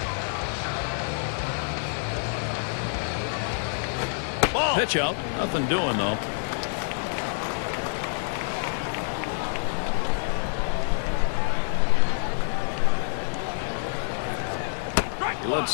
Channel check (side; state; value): right; silent; digital silence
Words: Ball. Pitch out, nothing doing though. He